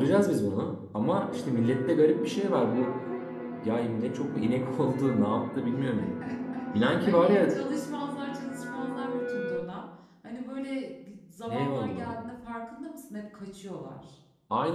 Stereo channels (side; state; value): both; identical; correlation 1.00